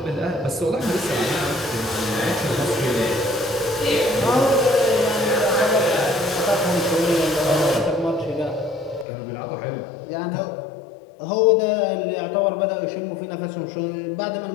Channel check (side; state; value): right; drops out; at 9.1 s